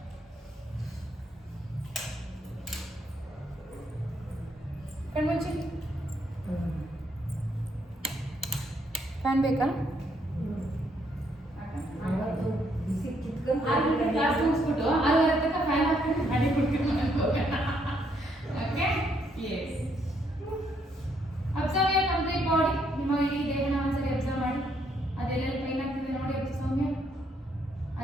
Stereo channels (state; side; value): normal; both; correlation 0.72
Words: ಕಣ್ಮುಚ್ಚಿ ಫ್ಯಾನ್ ಬೇಕಾ ಕ್ಲಾಸ್ ಮುಗಿಸ್ಬಿಟ್ಟು 6:30 ತನಕ ಫ್ಯಾನ್ ಹಾಕ್ಬಿಟ್ಟು ಮಾಡಿ ಕೊಡ್ತೀನಿ okay yes observe your complete body ನಿಮ್ಮ ಇಡೀ ದೇಹನ ಒಂದ್ಸರಿ ಅಬ್ಸರ್ವ್ ಮಾಡಿ ಅದೆಲ್ಲೆಲ್ಲಿ ಪೈನ್ ಆಗ್ತಿದೆ ನೋಡಿ ಸೌಮ್ಯ